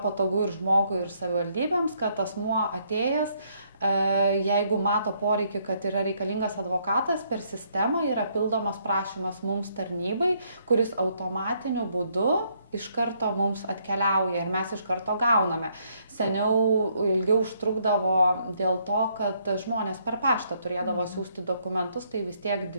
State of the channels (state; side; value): inverted; both; correlation -0.71